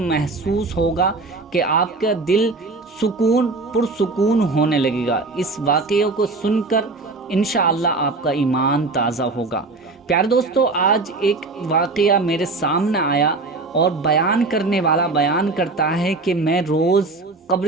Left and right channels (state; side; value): quieter; left; 3.6 dB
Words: ہوگا کہ آپ کا دل پرسکون ہونے لگے گا۔ اس واقعے کو سن کر انشاءاللہ آپ کا ایمان تازہ ہوگا۔ پیارے دوستو، آج ایک واقعہ میرے سامنے آیا اور بیان کرنے والا بیان کرتا ہے کہ میں روز